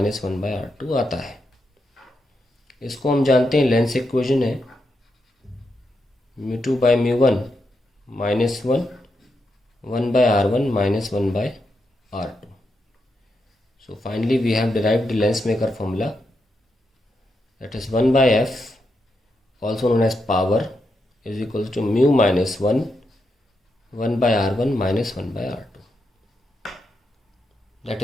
one by R2 आता है। इसको हम जानते हैं लेंस इक्वेशन है mu two bye mu one minus one by R1 minus one by R2। So finally we have derived the lens maker formula, that is 1 by f, also known as power, is equals to mu minus 1 by R1 minus 1 by R2.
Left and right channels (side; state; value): both; normal; correlation 0.84